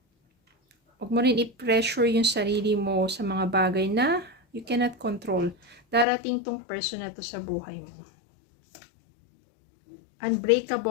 huwag mo rin i-pressure yung sarili mo sa mga bagay na you cannot control. Darating tong person na to sa buhay mo.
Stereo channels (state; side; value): drops out; right; at 6.1 s